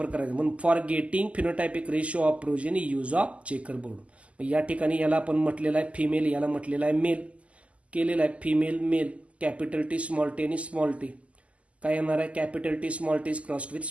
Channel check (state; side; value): late; left; 0.064 ms